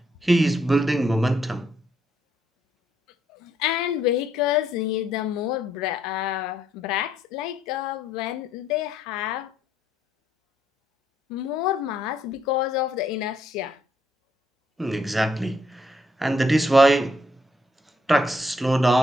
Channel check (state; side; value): normal; both; correlation 0.71